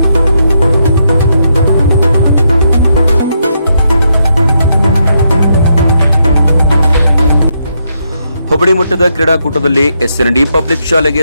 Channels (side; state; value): both; inverted; correlation -0.79